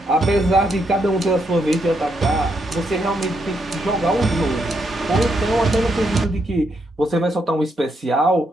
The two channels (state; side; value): normal; both; correlation 0.78